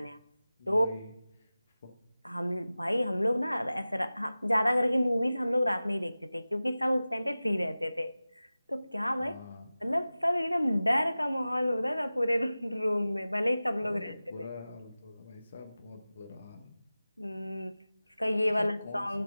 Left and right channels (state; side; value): inverted; both; correlation -0.97